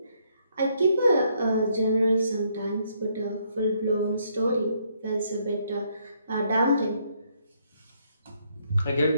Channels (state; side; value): inverted; both; correlation -0.71